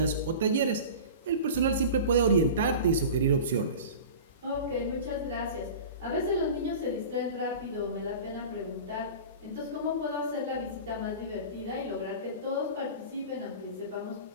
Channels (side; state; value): both; inverted; correlation -0.35